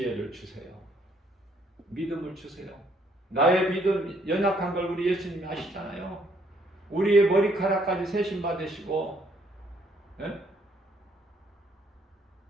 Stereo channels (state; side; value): normal; both; correlation 0.67